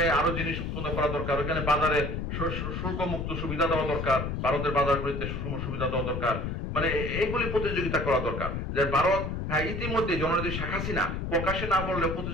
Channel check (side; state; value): left; noise; rumble, 3 dB below the sound